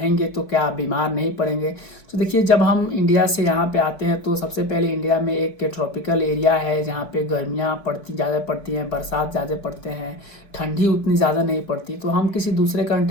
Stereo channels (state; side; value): late; right; 4.6 ms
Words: तो क्या आप बीमार नहीं पड़ेंगे। तो देखिए, जब हम इंडिया से यहाँ पे आते हैं तो सबसे पहले इंडिया में एक ट्रॉपिकल एरिया है जहाँ पे गर्मियाँ ज़्यादा पड़ती हैं, बरसात ज़्यादा पड़ते हैं, ठंडी उतनी ज़्यादा नहीं पड़ती। तो हम किसी दूसरे